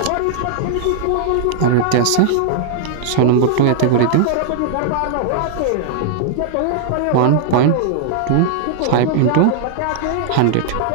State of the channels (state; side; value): different; both; correlation -0.01